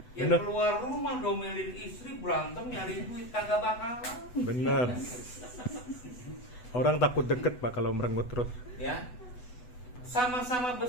Yang Bener. keluar rumah domelin istri, berantem nyari duit kagak bakalan. Benar. Orang takut deket, Pak, kalau merengut terus. Ya, sama-sama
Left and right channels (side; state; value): right; late; 8.1 ms